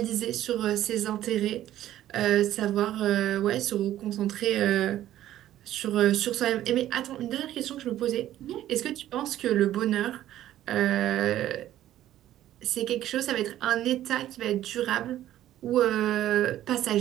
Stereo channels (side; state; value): left; quieter; 12.9 dB